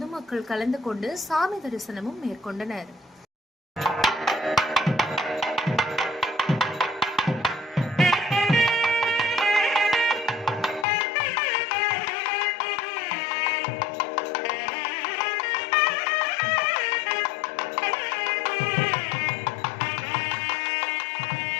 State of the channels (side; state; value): right; drops out; at 10.9 s